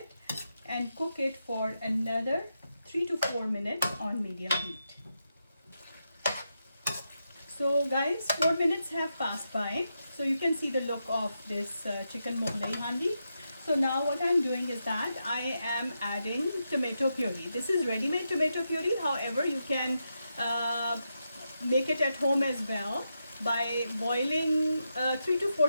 and cook it for another 3 to 4 minutes on medium heat. So guys, 4 minutes have passed by. So you can see the look of this chicken Mughlai Handi. So now what I'm doing is that I am adding tomato puree. This is ready-made tomato puree. However, you can make it at home as well by boiling 3 to 4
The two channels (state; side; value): inverted; both; correlation -0.86